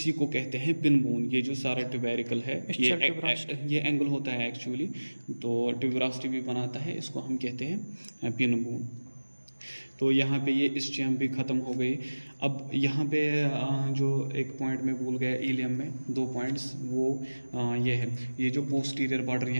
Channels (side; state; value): both; inverted; correlation -1.00